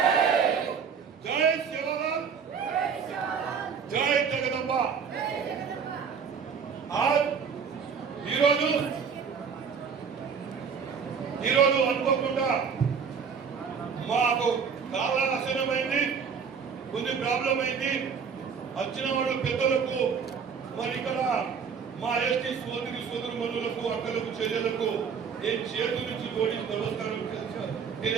जय, सेवालाल जय, जगदंबा। आज అనుకోకుండా మాకు చాలా ఆశనమైంది, కొన్ని ప్రాబ్లం అయింది. వచ్చిన వాళ్ళు పెద్దలకు మరి ఇక్కడ మా ఎస్టీ సోదరుమణులకు, అక్కలకు, చెల్లెలకు నేను చేతుల నుంచి జోడించి నమస్కారం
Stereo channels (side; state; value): left; quieter; 6.4 dB